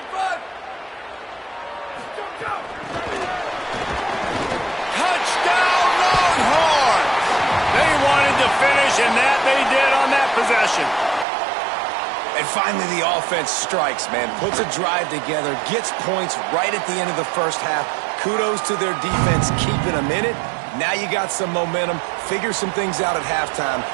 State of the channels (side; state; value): left; drops out; at 11.2 s